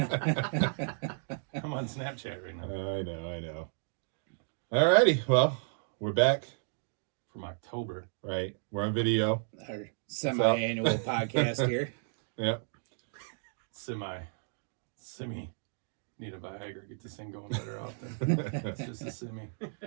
I'm on Snapchat right now. I know. Alrighty, well, we're back. From October. Right. We're on video. Our semi-annual podcast here. Yep. Semi. Need a Viagra. Get this thing going better often. It's just a semi.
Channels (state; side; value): silent; left; digital silence